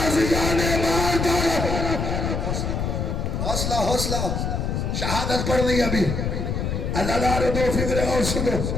حوصلہ حوصلہ. شہادت پڑھنی ابھی. اللہ دار دو فکرے اور سنو.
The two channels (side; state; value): left; noise; rumble, 1 dB below the sound